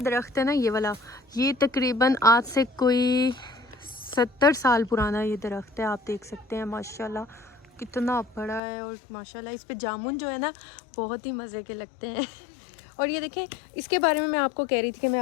है ना, ये वाला, ये तकरीबन आज से कोई 70 साल पुराना ये दरख्त है। आप देख सकते हैं माशाल्लाह कितना बड़ा है। और माशाल्लाह इस पे जामुन जो है ना बहुत ही मज़े के लगते हैं। और ये देखें, इसके बारे में मैं आपको कह रही थी कि मैं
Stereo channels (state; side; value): drops out; right; at 8.6 s